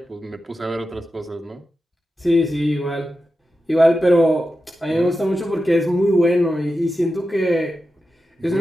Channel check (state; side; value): normal; both; correlation 0.91